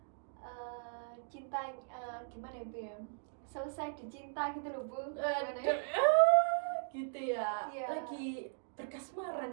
cinta gimana ya, Bu ya? Selesai dicinta gitu loh, Bu. Gimana ya? Gitu ya. Iya. Lagi berkasmaran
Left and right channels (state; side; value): silent; left; digital silence